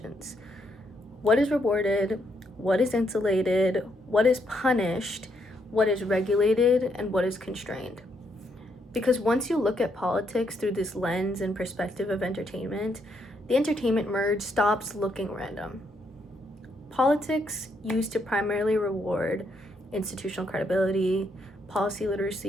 What is rewarded? What is insulated? What is punished? What is regulated? And what is constrained? Because once you look at politics through this lens and perspective of entertainment, the entertainment merge stops looking random. Politics used to primarily reward institutional credibility, policy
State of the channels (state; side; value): normal; both; correlation 0.75